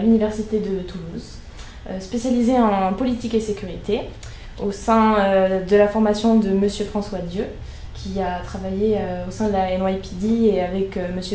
de Toulouse, spécialisé en politique et sécurité, au sein de la formation de Monsieur François Dieu, qui a travaillé au sein de la NYPD et avec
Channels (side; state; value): both; identical; correlation 1.00